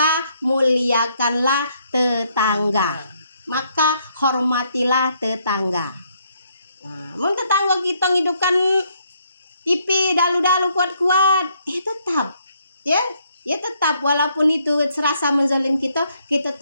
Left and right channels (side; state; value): both; inverted; correlation -0.71